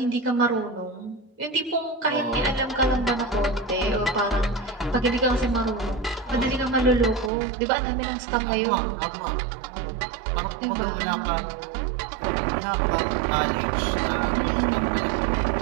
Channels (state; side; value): drops out; left; at 7.3 s